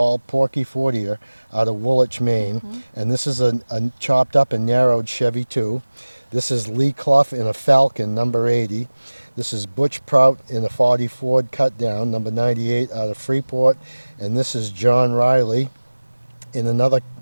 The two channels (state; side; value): inverted; both; correlation -1.00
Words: Porky Fortier out of Woolwich, Maine. And this is a chopped up and narrowed Chevy 2. This is Lee Clough in a Falcon, number 80. This is Butch Prout in a 40 Ford cut down, number 98 out of Freeport. And this is John Riley in another